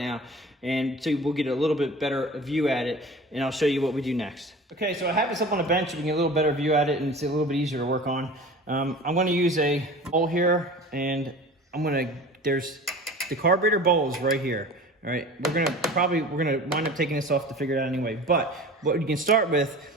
and so we'll get a little bit better view at it, and I'll show you what we do next. Okay, so I have this up on the bench, so we can get a little better view at it, and it's a little bit easier to work on. I'm gonna use a bowl here, and there's the carburetor bowls right here. All right, we're gonna wind up taking this off to figure it out anyway, but what you can start with,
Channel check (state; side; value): normal; both; correlation 0.39